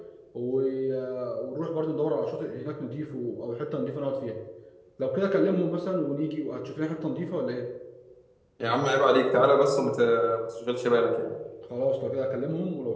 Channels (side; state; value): both; identical; correlation 1.00